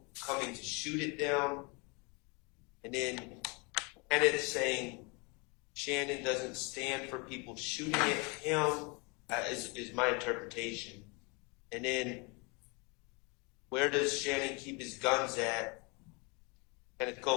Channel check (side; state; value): right; quieter; 30.4 dB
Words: coming to shoot at them. And then Kenneth saying Shannon doesn't stand for people shooting at him, is my interpretation. And then where does Shannon keep his guns at? Kenneth